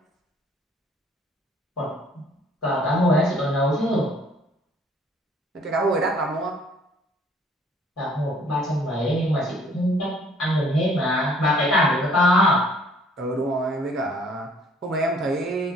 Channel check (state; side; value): normal; both; correlation 0.58